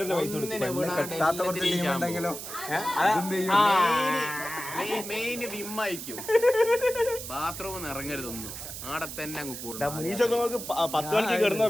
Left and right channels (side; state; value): right; noise; hiss, 9 dB below the sound